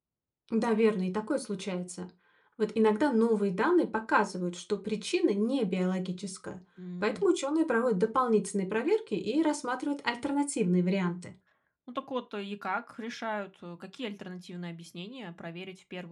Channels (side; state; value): both; identical; correlation 1.00